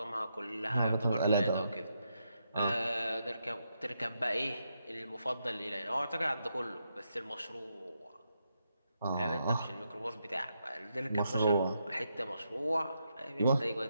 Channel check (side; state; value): both; inverted; correlation -0.82